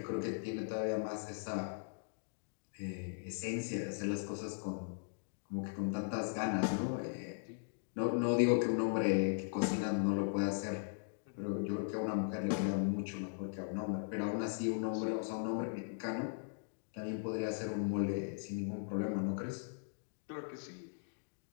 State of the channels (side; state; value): right; silent; digital silence